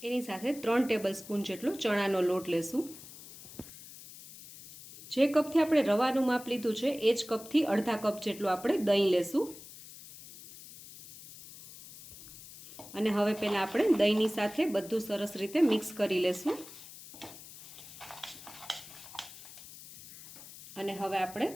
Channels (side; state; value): left; noise; hiss, 16 dB below the sound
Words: એની સાથે 3 ટેબલસ્પૂન જેટલો ચણાનો લોટ લેશું. જે કપથી આપણે રવાનું માપ લીધું છે એ જ કપથી અડધા કપ જેટલું આપણે દહીં લેશું. અને હવે પહેલાં આપણે દહીંની સાથે બધું સરસ રીતે મિક્સ કરી લેશું. અને હવે આપણે